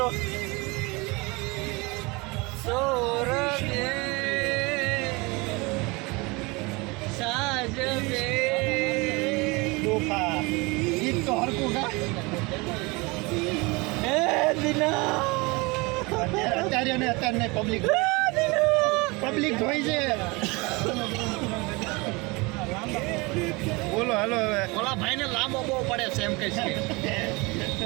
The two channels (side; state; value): left; quieter; 25.8 dB